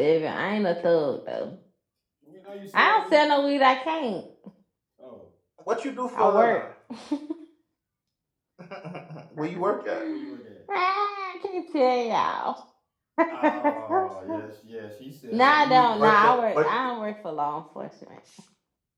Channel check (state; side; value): identical; both; correlation 1.00